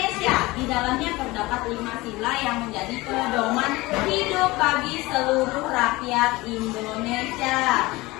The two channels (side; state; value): right; quieter; 21.0 dB